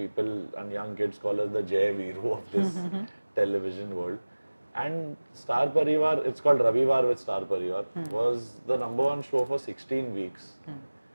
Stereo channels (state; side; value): inverted; both; correlation -1.00